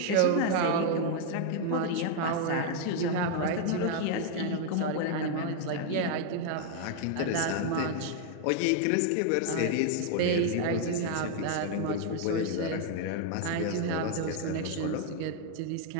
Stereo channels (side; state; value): both; different; correlation 0.00